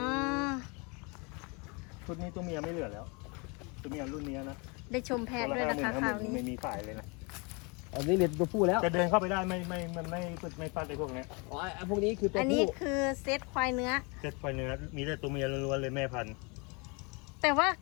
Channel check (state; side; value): quieter; right; 30.7 dB